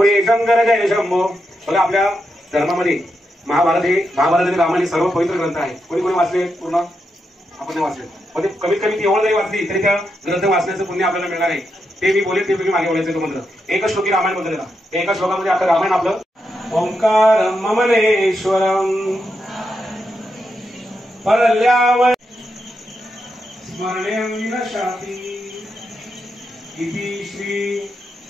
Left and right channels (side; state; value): both; normal; correlation 0.84